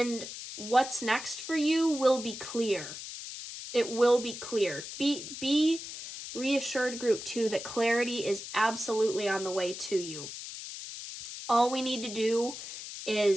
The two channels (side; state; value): left; noise; hiss, 10 dB below the sound